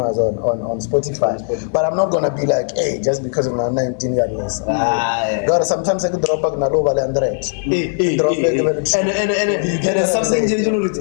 on Spotify but I'm not gonna be like hey just because of my 19 years but sometimes I could drop back na over 100 drop back and something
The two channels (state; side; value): silent; right; 60 dB below the other